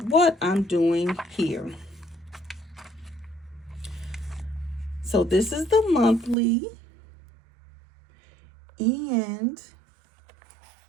I'm doing here. So this is the monthly, and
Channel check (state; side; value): drops out; left; at 6.4 s